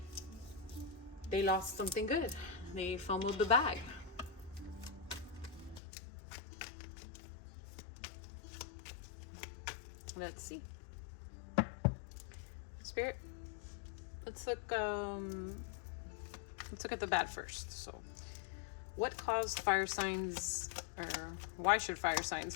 they lost something good. They fumbled the bag. Let's see. Spirit, let's look at the bad first. So what caused fire signs, or why should fire signs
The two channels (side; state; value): right; drops out; at 5.8 s